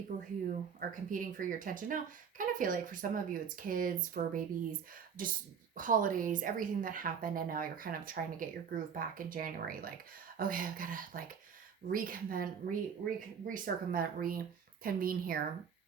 who are competing for your attention. Now, kind of feel like for some of you, it's kids, fur babies, just holidays, everything that happened. And now you're kind of trying to get your groove back in January. Like, okay, I've got to like reconvene here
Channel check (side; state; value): left; quieter; 7.0 dB